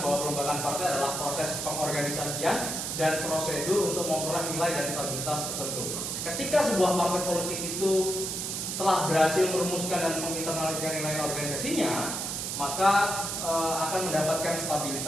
bahwa pelembagaan partai adalah proses pengorganisasian dan prosedur untuk memperoleh nilai dan stabilitas tertentu. Ketika sebuah partai politik itu telah berhasil merumuskan dan menginternalisasikan nilai organisasinya, maka akan mendapatkan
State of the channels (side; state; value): right; noise; hiss, 3 dB below the sound